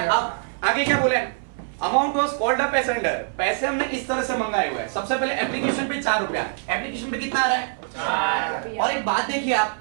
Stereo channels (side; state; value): left; silent; 63 dB below the other